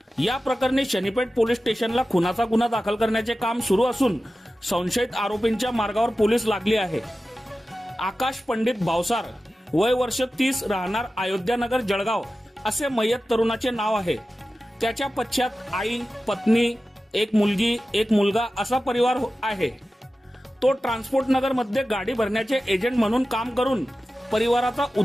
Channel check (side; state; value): both; normal; correlation 0.94